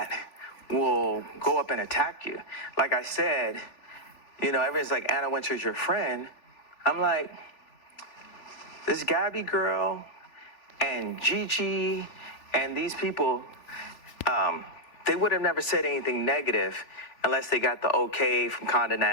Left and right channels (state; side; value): late; right; 3.5 ms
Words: will go up and attack you. Like I said, you know, everyone's like, Anna Wintour's your friend. I'm like, this Gabby girl and Gigi and these people, they would have never said anything negative unless they got the okay from Condé